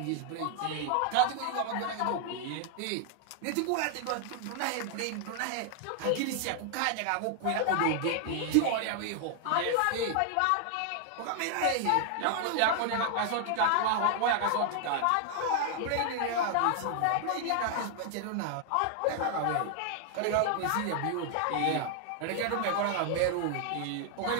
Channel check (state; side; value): different; both; correlation 0.00